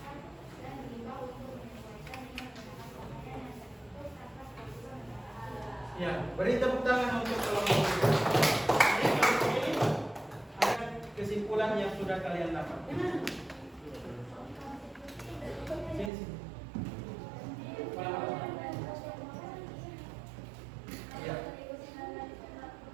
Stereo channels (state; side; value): drops out; left; at 16.1 s